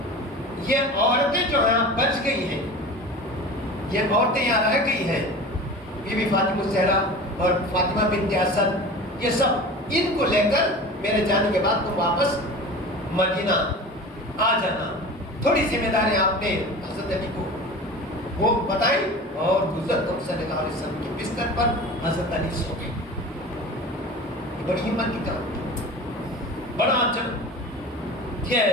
یہ عورتیں جو ہیں بچ گئی ہیں، یہ عورتیں یہاں رہ گئی ہیں، بی بی فاطمہ الزہرا اور فاطمہ بنت اسد، یہ سب ان کو لے کر میرے جانے کے بعد تم واپس مدینہ آ جانا. تھوڑی ذمہ داری آپ نے حضرت علی کو وہ بتائی اور حضرت صلی اللہ علیہ وسلم کے بستر پر حضرت علی سو گئے. بڑی ہمت کی کام، بڑا عجب،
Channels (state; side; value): normal; both; correlation 0.36